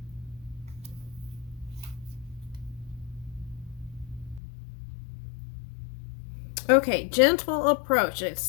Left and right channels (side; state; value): right; drops out; at 4.4 s